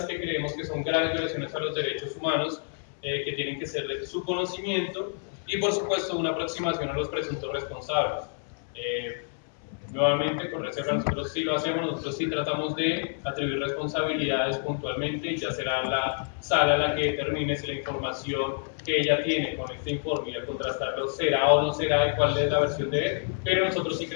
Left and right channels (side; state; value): right; silent; 59 dB below the other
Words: que creemos que son graves violaciones a los derechos humanos, que tienen que ser de su conocimiento, y por supuesto, una aproximación a los presuntos responsables. Nuevamente, con reserva, nosotros sí lo hacemos, nosotros sí tratamos de atribuir responsabilidades puntualmente, ya será la sala la que determine si la información que ella tiene con este informe y al contrastarlo será o no será y cuál es la versión de él, pero nosotros sí